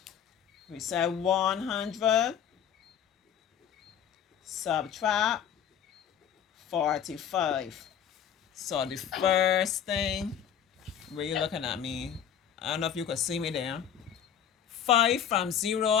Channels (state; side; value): quieter; right; 8.9 dB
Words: we said 100 subtract 45. So the first thing, where you looking at me? I don't know if you could see me there. 5 from 0,